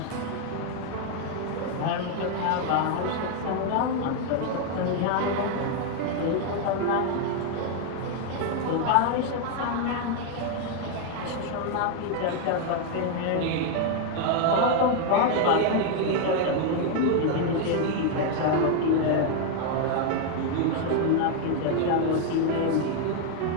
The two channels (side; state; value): both; different; correlation 0.00